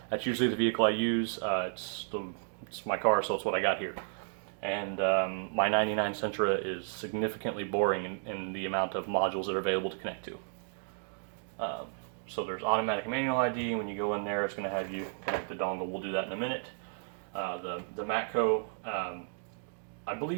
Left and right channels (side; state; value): left; silent; digital silence